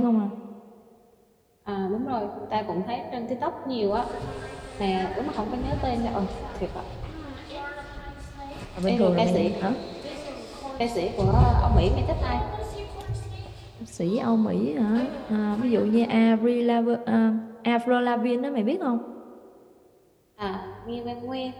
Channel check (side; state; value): both; identical; correlation 1.00